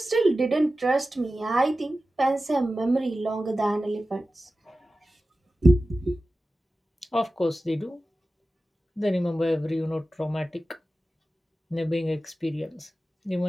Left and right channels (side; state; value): both; normal; correlation 0.94